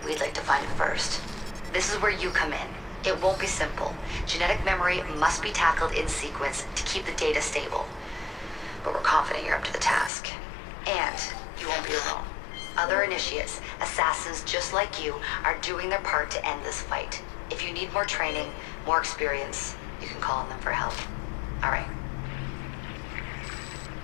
we'd like to find it first. This is where you come in. It won't be simple. Genetic memory must be tackled in sequence to keep the data stable. But we're confident you're up to the task. And you won't be alone. Other initiates, assassins just like you, are doing their part to end this fight. If you need more training, more experience, you can call on them for help. All right.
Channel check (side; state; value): right; drops out; at 10.1 s